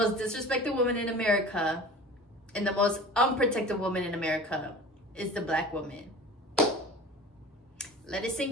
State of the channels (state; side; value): normal; both; correlation 0.39